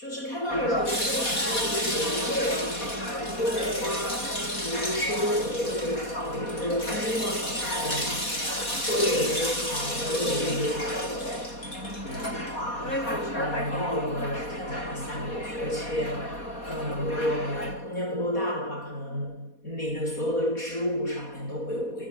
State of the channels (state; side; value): late; right; 4.2 ms